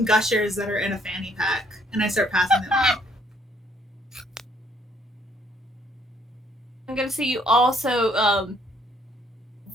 gushers that are in a fanny pack and I start passing them out. I'm gonna say you also,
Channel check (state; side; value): normal; both; correlation 0.66